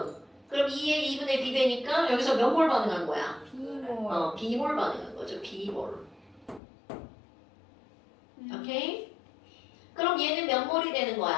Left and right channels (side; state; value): right; drops out; at 6.6 s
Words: 그럼 2의 2분의 B배니까 여기서 몇 몰 반응한 거야? B몰. B몰 반응한 거죠. B몰. 오케이? 그럼 얘는 몇 몰이 되는